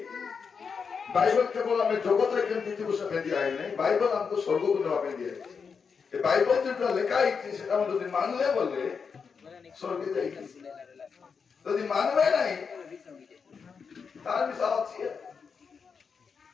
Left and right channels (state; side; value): quieter; right; 5.8 dB